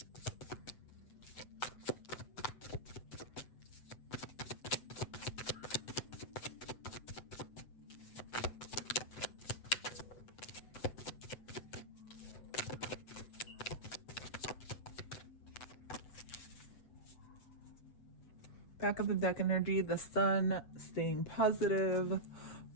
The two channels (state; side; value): late; right; 8.0 ms